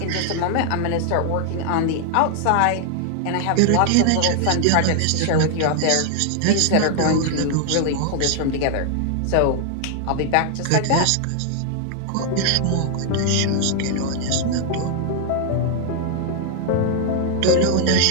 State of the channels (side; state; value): both; different; correlation 0.00